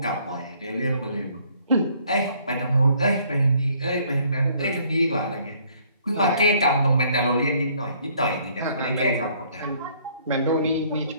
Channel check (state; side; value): inverted; both; correlation -0.62